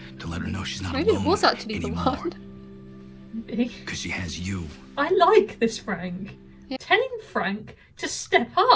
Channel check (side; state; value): both; identical; correlation 1.00